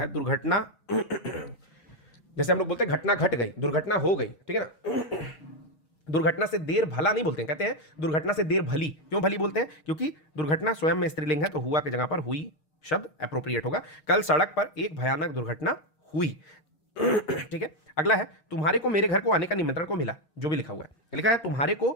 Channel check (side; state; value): right; late; 6.5 ms